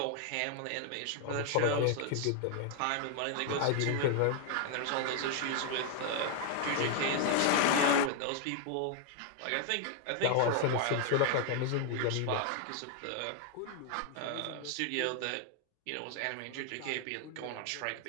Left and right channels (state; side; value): different; both; correlation 0.00